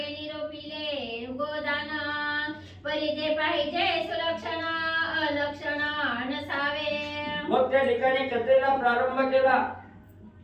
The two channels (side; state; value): both; identical; correlation 1.00